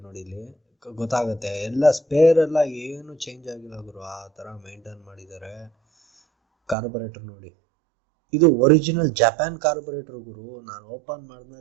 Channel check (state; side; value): drops out; left; at 6.8 s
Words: ನೋಡಿ, ಇಲ್ಲಿ ಗೊತ್ತಾಗುತ್ತೆ. ಎಲ್ಲ ಸ್ಪೇರ್ ಎಲ್ಲ ಏನು ಚೇಂಜ್ ಆಗಿಲ್ಲ ಗುರು, ಆ ಥರ ಮೇಂಟೈನ್ ಮಾಡಿದ್ದಾರೆ. ಕಾರ್ಬೊರೇಟರ್ ನೋಡಿ, ಇದು ಒರಿಜಿನಲ್ ಜಪಾನ್ ಕಾರ್ಬೊರೇಟರ್ ಗುರು. ನಾನು ಓಪನ್